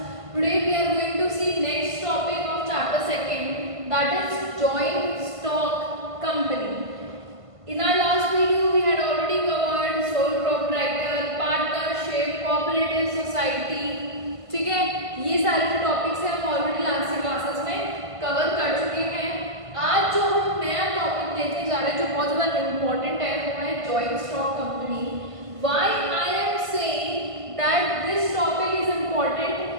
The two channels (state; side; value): late; left; 1.5 ms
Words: Today we are going to see next topic of chapter 2, that is joint stock company. In our last video we had already covered sole proprietor, partnership, cooperative society. ठीक है, ये सारे जो topics हैं हम already last की classes में cover कर चुके हैं। आज जो हम नया टॉपिक लेके जा रहे हैं जो बहुत ज़्यादा इम्पोर्टेंट है वो है joint stock company. Why I am saying that this topic is important